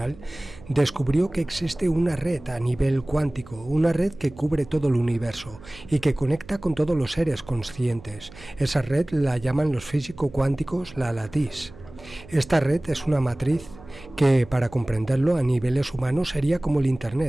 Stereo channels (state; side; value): noise; right; hum, 19 dB below the sound